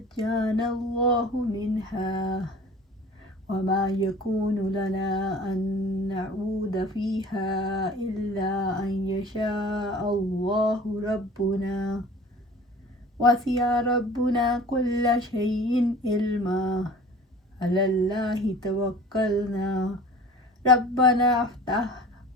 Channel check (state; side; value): normal; both; correlation 0.44